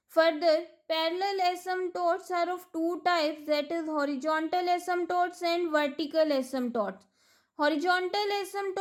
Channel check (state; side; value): identical; both; correlation 1.00